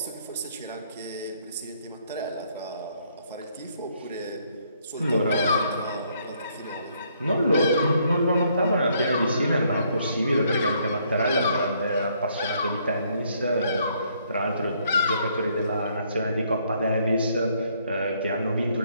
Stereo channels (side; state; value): both; inverted; correlation -0.69